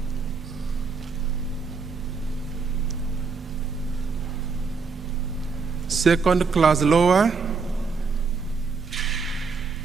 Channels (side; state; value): left; quieter; 4.8 dB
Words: Second class lower,